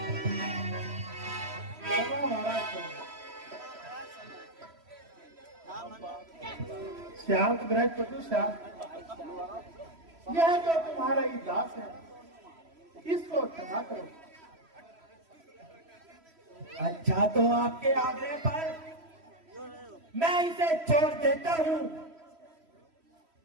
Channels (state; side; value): late; left; 3.1 ms